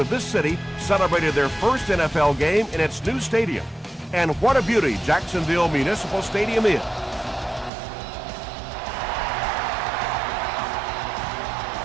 this city celebrated their first NFL game in its new stadium. And what a beauty Jacksonville Municipal Stadium is.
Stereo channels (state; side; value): drops out; left; at 7.7 s